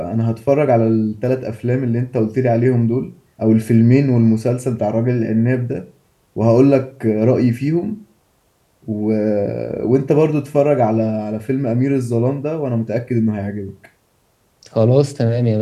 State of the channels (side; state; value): both; identical; correlation 1.00